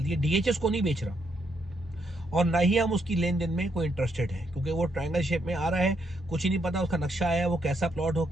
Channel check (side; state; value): both; normal; correlation 0.76